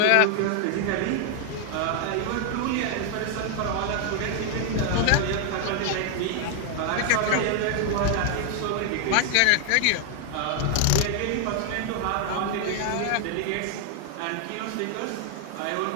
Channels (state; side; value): different; both; correlation 0.00